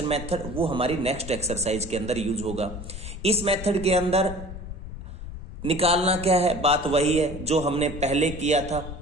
मेथड, वो हमारी नेक्स्ट एक्सरसाइज के अंदर यूज होगा। इस मेथड के अंदर निकालना क्या है, बात वही है जो हमने पहले किया था।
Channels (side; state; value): left; noise; rumble, 10 dB below the sound